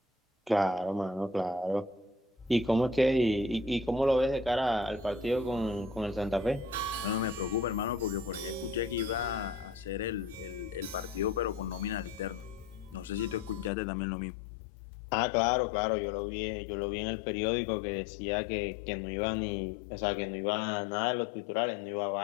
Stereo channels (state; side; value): drops out; right; at 13.7 s